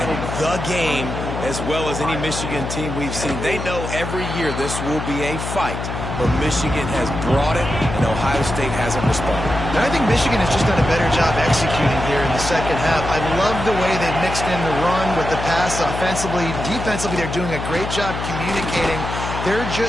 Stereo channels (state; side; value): noise; left; hum, 6 dB below the sound